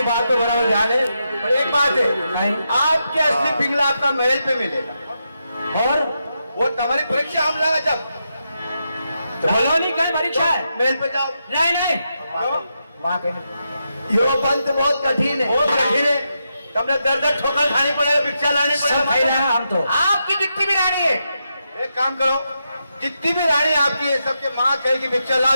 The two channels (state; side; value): inverted; both; correlation -0.85